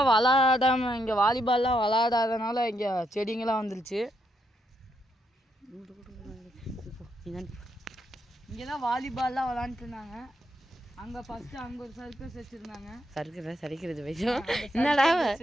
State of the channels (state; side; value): normal; both; correlation 0.79